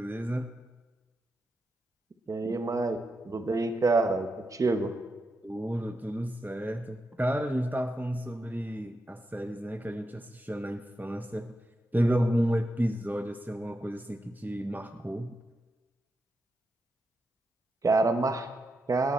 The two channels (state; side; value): normal; both; correlation 0.86